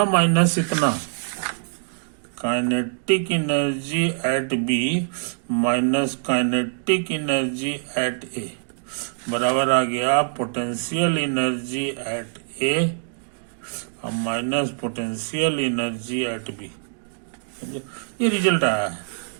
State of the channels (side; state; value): left; silent; digital silence